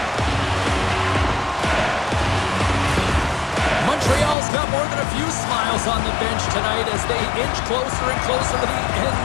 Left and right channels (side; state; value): right; drops out; at 4.4 s